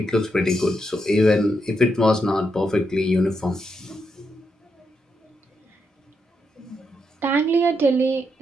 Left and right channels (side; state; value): both; normal; correlation 0.82